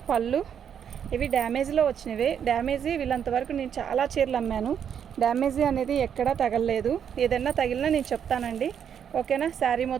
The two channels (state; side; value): quieter; left; 8.3 dB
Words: పళ్ళు, ఇవి డ్యామేజ్లో వచ్చినవి. డ్యామేజీ వీళ్ళంతవరకు నేను చాలా చీరలు అమ్మాను. డ్యామేజీ అనేది ఎక్కడా తగలలేదు. ఏదైనా తగిలినా నేను చెప్తానండి. ఓకేనా. శారీ